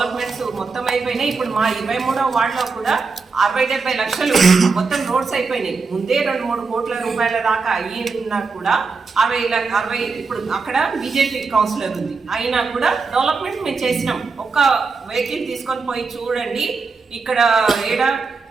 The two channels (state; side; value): quieter; left; 4.5 dB